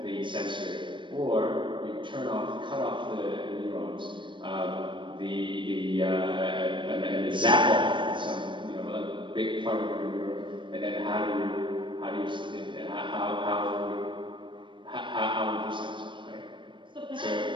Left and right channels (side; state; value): left; late; 0.23 ms